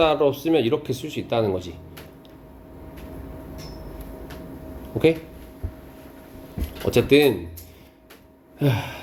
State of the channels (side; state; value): both; identical; correlation 1.00